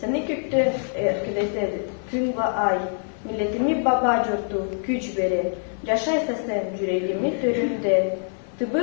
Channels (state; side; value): silent; right; 56 dB below the other